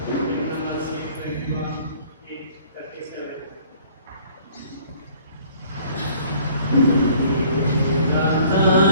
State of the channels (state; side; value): inverted; both; correlation -0.55